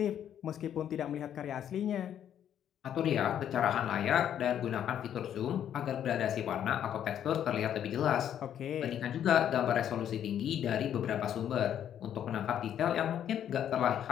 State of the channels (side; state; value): right; quieter; 9.9 dB